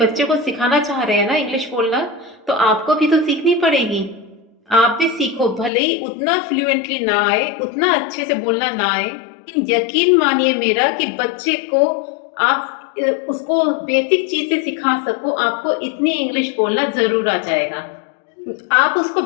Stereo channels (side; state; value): right; drops out; at 5.7 s